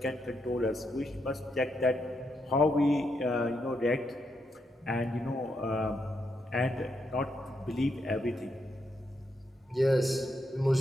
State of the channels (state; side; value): normal; both; correlation 0.80